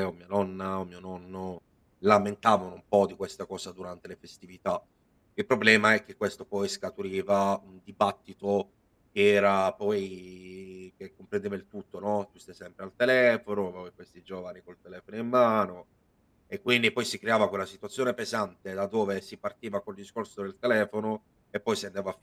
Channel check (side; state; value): both; identical; correlation 1.00